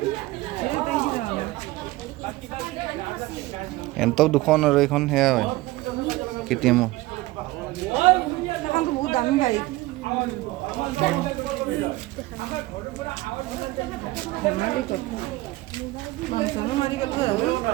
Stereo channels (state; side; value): quieter; left; 19.1 dB